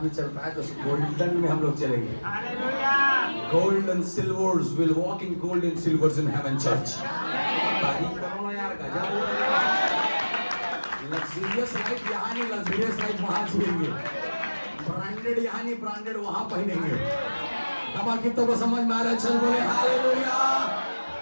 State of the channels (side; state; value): both; inverted; correlation -1.00